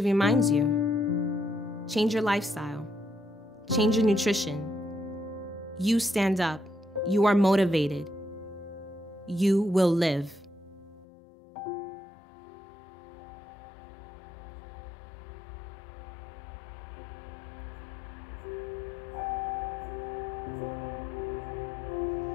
reminds you, change your lifestyle, change your nutrition. You stand up, you are motivated, you will live.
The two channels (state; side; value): drops out; right; at 11.1 s